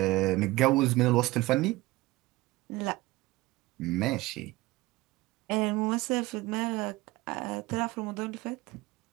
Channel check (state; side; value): quieter; left; 19.6 dB